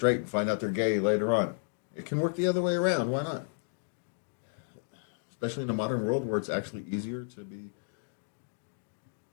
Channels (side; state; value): right; silent; digital silence